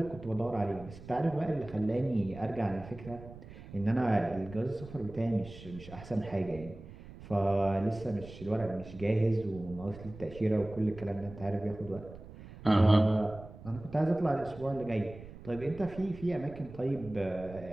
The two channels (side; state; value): right; noise; rumble, 16 dB below the sound